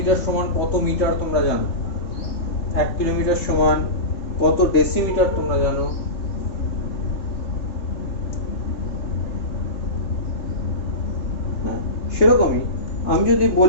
সমান কত মিটার তোমরা জানো। 1 কিলোমিটার সমান কত ডেসিমিটার তোমরা জানো। সেরকমই আমি যদি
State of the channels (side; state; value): right; late; 3.6 ms